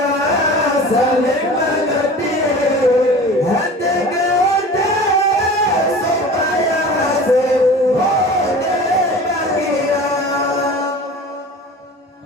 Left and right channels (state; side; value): normal; both; correlation 0.39